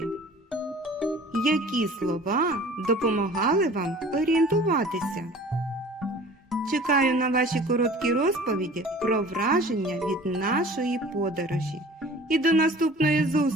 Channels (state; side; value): normal; both; correlation 0.46